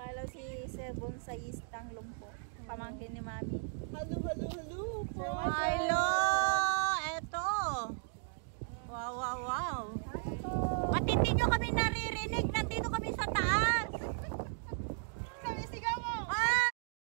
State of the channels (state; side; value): silent; left; 54 dB below the other